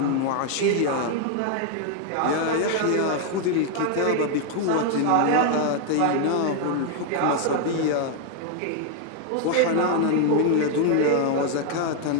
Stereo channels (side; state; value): both; different; correlation 0.00